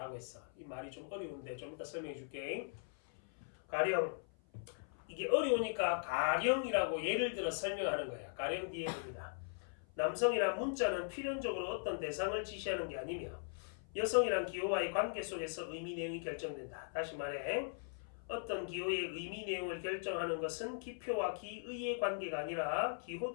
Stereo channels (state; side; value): silent; right; 51 dB below the other